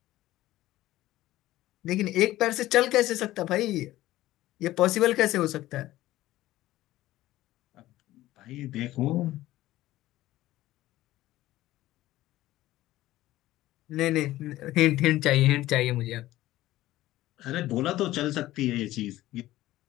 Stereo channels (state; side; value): quieter; right; 15.9 dB